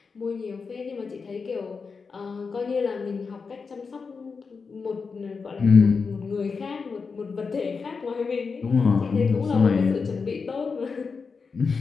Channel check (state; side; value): quieter; right; 5.0 dB